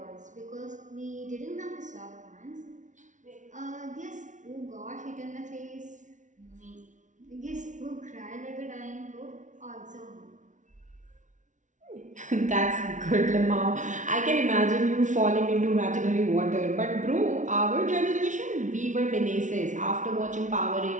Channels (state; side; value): late; left; 0.37 ms